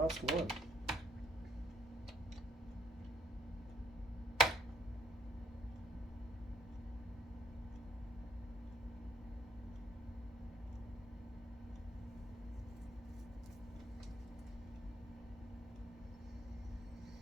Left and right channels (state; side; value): normal; both; correlation 0.65